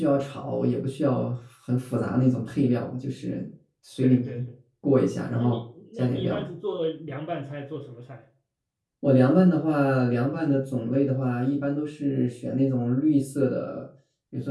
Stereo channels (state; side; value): identical; both; correlation 1.00